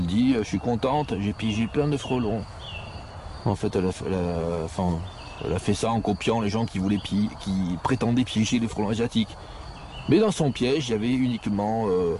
dit je suis contente, j'ai piégé plein de frelons. En fait elle a fait ça en copiant les gens qui prétendaient piéger les frelons asiatiques. Mais dans son piège, il y avait uniquement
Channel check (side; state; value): both; identical; correlation 1.00